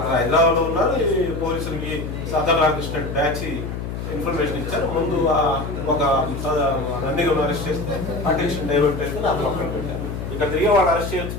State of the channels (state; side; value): noise; left; hum, 6 dB below the sound